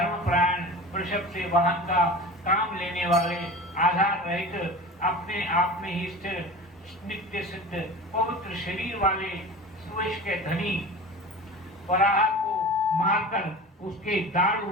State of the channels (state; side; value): normal; both; correlation 0.34